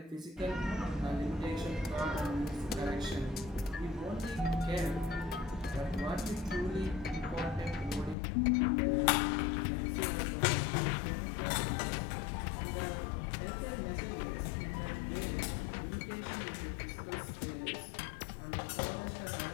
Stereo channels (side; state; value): right; drops out; at 8.2 s